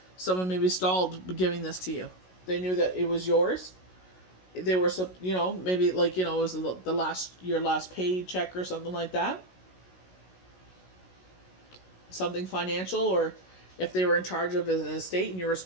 Someone maybe stalled giving this to you. They knew that it was yours. They were, maybe like, it was your last paycheck or something like that. Something financial, or if they were in charge of an estate and you were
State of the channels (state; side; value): late; right; 16 ms